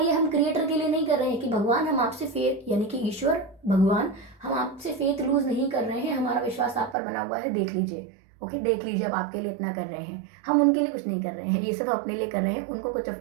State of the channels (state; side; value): drops out; left; at 7.0 s